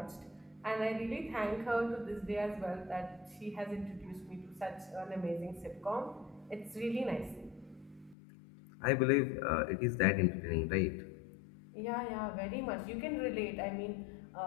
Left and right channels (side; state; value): right; drops out; at 8.2 s